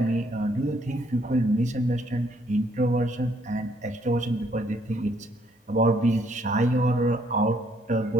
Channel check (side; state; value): both; normal; correlation 0.68